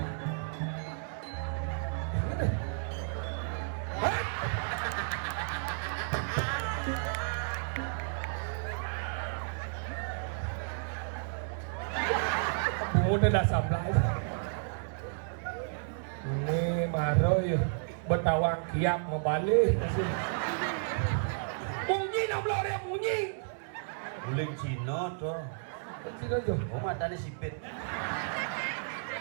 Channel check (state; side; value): silent; left; digital silence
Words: Udah dah sablay. Ini maro ya betawang kiam membalik. Bunyi nablo dia bunyi. Uling Cina tuh. Cina jo. Oh matanya sipit.